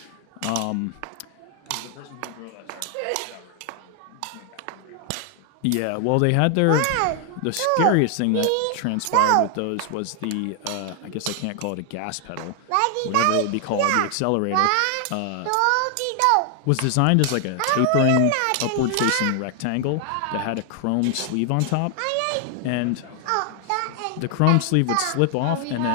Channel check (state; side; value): different; both; correlation 0.00